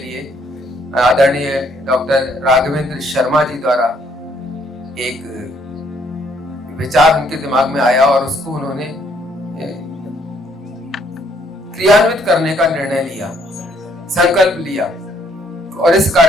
आदरणीय डॉक्टर राघवेंद्र शर्मा जी द्वारा एक विचार उनके दिमाग में आया और उसको उन्होंने क्रियान्वित करने का निर्णय लिया, संकल्प लिया। और इस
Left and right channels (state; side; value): normal; both; correlation 0.67